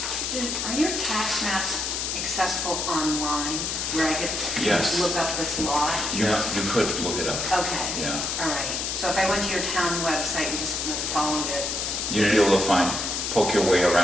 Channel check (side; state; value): left; noise; hiss, 2 dB below the sound